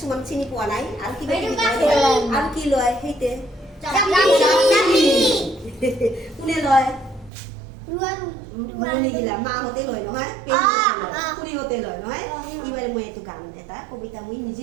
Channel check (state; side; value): drops out; left; at 7.3 s